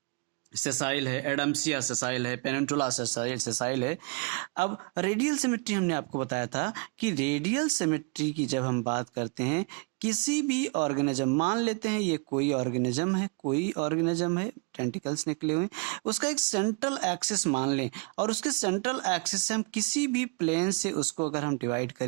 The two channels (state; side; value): quieter; left; 32.2 dB